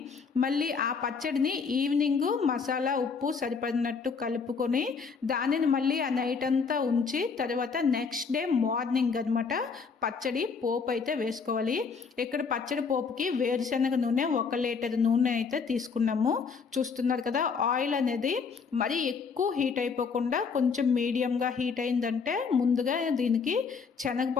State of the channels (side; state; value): right; quieter; 5.4 dB